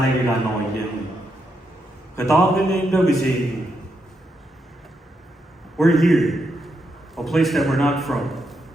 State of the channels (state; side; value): normal; both; correlation 0.81